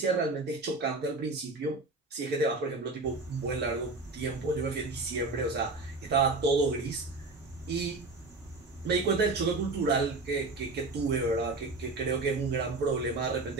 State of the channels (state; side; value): quieter; left; 3.3 dB